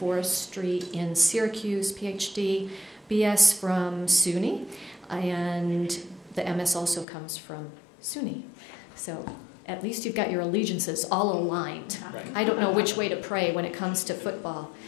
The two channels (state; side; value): drops out; right; at 7.1 s